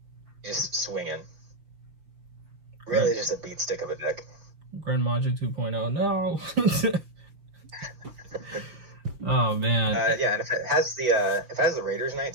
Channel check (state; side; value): late; left; 5.9 ms